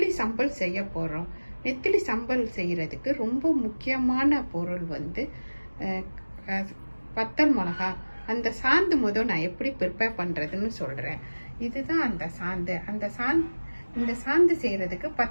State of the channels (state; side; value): inverted; both; correlation -1.00